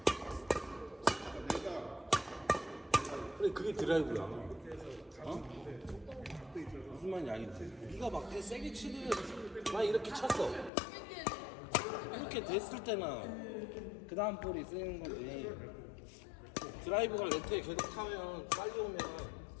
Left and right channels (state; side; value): drops out; right; at 10.7 s